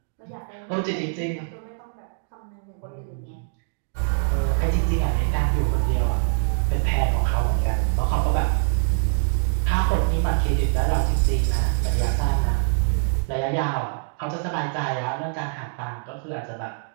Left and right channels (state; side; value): silent; left; digital silence